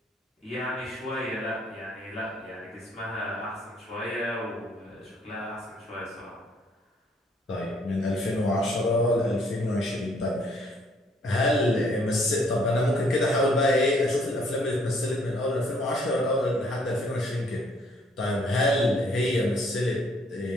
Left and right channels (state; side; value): normal; both; correlation 0.64